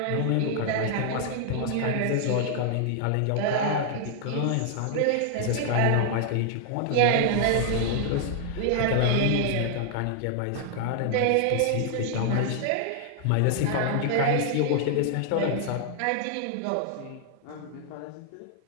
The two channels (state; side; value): different; both; correlation 0.00